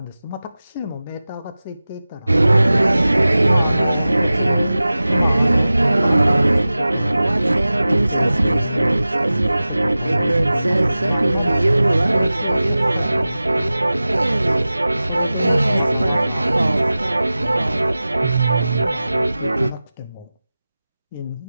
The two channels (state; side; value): inverted; both; correlation -0.96